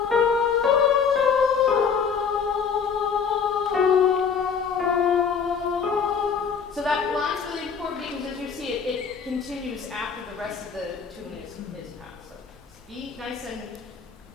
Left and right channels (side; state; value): right; quieter; 6.2 dB